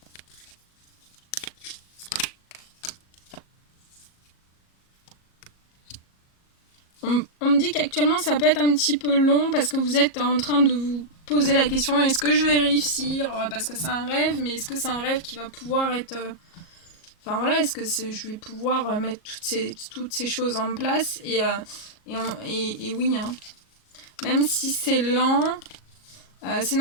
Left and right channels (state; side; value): late; right; 37 ms